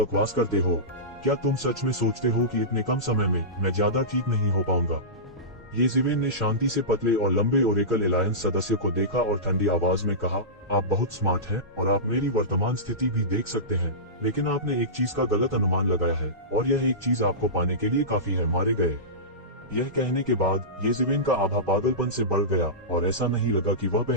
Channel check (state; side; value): normal; both; correlation -0.19